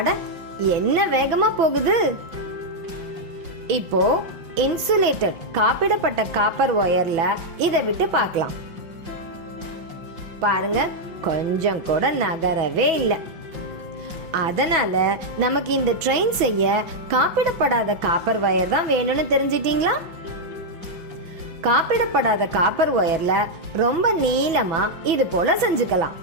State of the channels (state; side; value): late; left; 6.1 ms